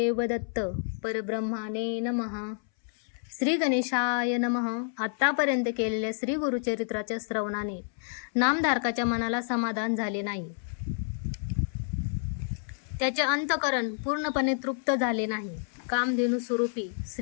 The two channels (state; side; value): silent; right; 59 dB below the other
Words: दत्त. परब्रह्माने नमः. श्री गणेशाय नमः. आत्तापर्यंत केलेल्या श्री गुरुचरित्राच्या श्रवणाने नामधारकाच्या मनाला समाधान झाले नाही. त्याचे अंतकरण पूर्णपणे तृप्त झाले नाही. कामधेनू स्वरूपी